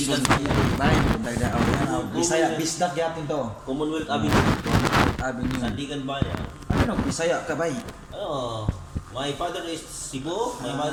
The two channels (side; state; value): both; identical; correlation 1.00